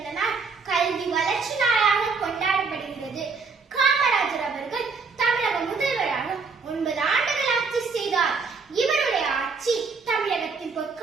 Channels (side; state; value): left; quieter; 4.7 dB